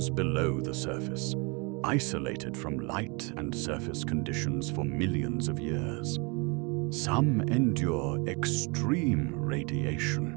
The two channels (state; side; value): quieter; left; 30.7 dB